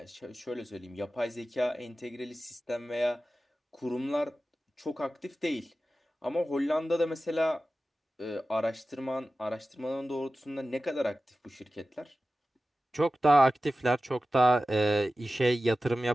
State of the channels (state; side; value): normal; both; correlation 0.95